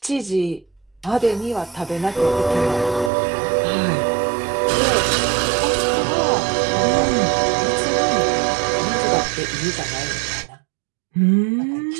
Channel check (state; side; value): drops out; left; at 3.1 s